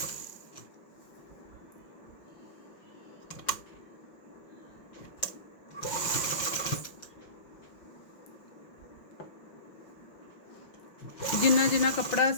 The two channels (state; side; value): late; right; 5.6 ms